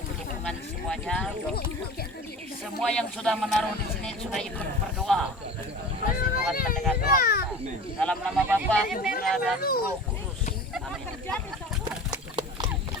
dukungan semuanya. Semua yang sudah menaruh di sini sudah ikut berdoa. Pasti Tuhan mendengar doa kita. Dalam nama Bapa, Putra dan Roh Kudus. Amin.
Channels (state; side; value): normal; both; correlation 0.36